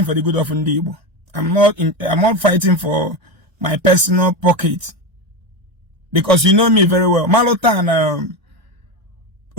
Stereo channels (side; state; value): left; late; 1.9 ms